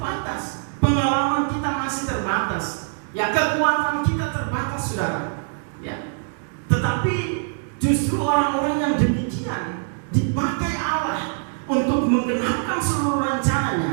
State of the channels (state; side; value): silent; left; digital silence